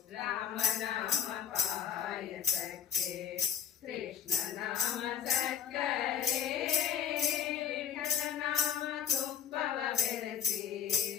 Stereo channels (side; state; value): right; quieter; 8.5 dB